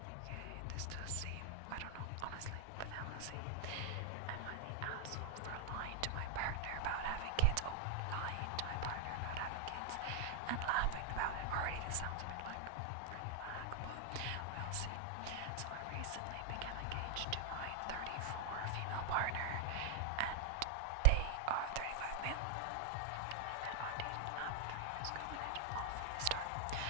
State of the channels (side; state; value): both; different; correlation 0.00